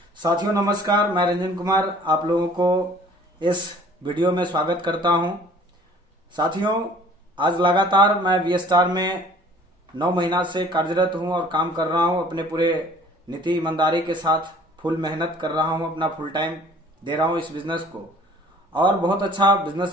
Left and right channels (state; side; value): normal; both; correlation 0.52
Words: साथियों नमस्कार, मैं रंजन कुमार आप लोगों को इस वीडियो में स्वागत करता हूं। साथियों, आज लगातार मैं वी स्टार में 9 महीना से कार्यरत हूं और काम कर रहा हूं। अपने पूरे नीति ईमानदारी के साथ फुल मेहनत कर रहा हूं, अपना फुल टाइम दे रहा हूं इस बिजनेस को और बहुत अच्छा